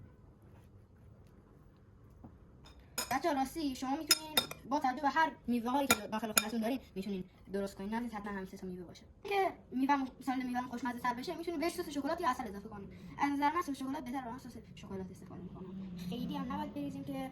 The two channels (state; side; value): identical; both; correlation 1.00